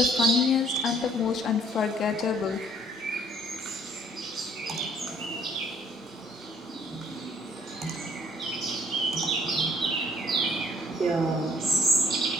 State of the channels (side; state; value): both; normal; correlation 0.60